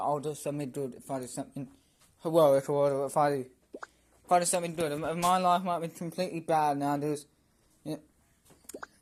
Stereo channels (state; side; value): identical; both; correlation 1.00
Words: do something good if I do something heroic, or if I do something good. If my life might be completely bad now, and